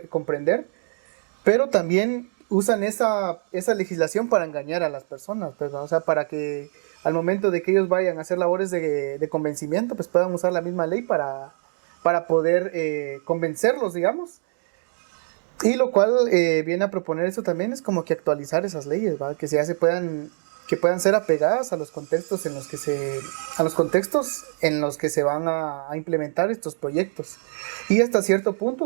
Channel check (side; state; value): left; silent; digital silence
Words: comprender, pero también usan esa legislación para engañar a las personas, pues, ¿no? O sea, para que al momento de que ellos vayan a hacer labores de convencimiento, pues puedan usar la misma ley para poder convencerlos, digamos. Y lo cual viene a proponer eso también es como que actualizar esas leyes, ¿va? Que puedan ser apegadas a los contextos en los que se van a implementar estos proyectos. Y hasta cierto